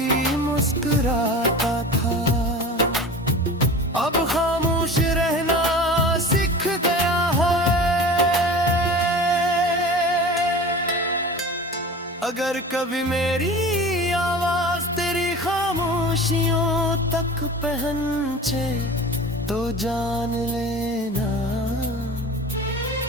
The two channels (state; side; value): normal; both; correlation 0.36